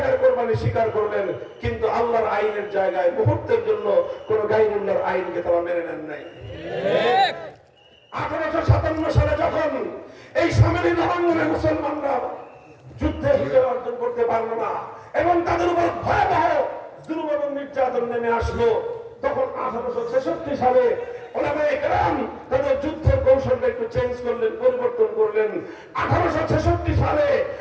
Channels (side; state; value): both; identical; correlation 1.00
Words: কোরবানি স্বীকার করলেন, কিন্তু আল্লাহর আইনের জায়গায় মুহূর্তের জন্য কোন গায়রুল্লাহর আইনকে তারা মেনে নেন নাই। 1857 সালে যখন এই সামনে নবাঙ্গনে মুসলমানরা যুদ্ধে বিজয় অর্জন করতে পারলো না এবং তাদের উপর ভয়াবহ জুলুম এবং নির্যাতন নেমে আসলো, তখন 1866 সালে ওলামায়ে কেরাম তাদের যুদ্ধের কৌশলটা একটু চেঞ্জ করলেন, পরিবর্তন করলেন। 1866 সালে